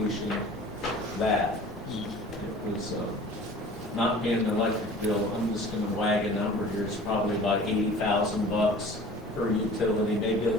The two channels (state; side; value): normal; both; correlation 0.44